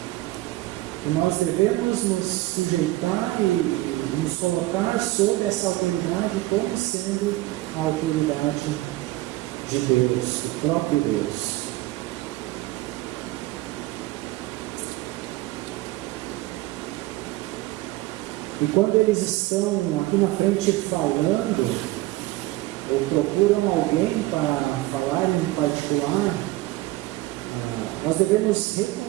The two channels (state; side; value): quieter; left; 18.4 dB